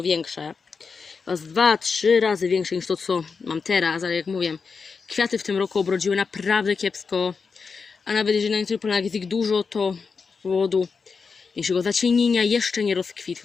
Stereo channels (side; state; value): right; quieter; 5.2 dB